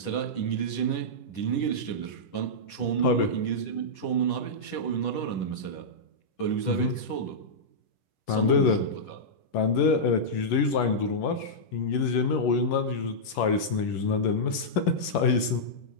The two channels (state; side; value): late; right; 10 ms